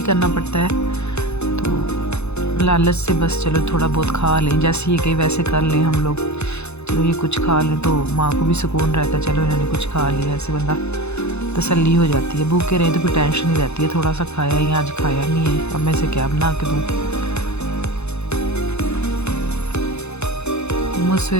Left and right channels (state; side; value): late; right; 0.81 ms